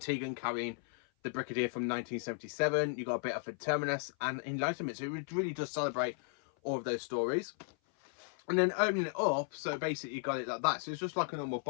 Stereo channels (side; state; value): right; silent; 54 dB below the other